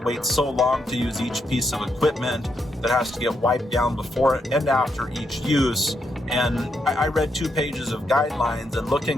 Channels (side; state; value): both; normal; correlation 0.80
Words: so long to use each piece of equipment that has to get wiped down before and after each use. And I read 2 pages of guidelines, and